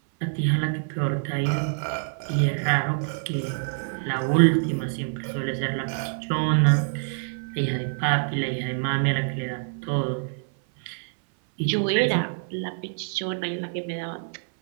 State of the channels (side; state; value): left; silent; 61 dB below the other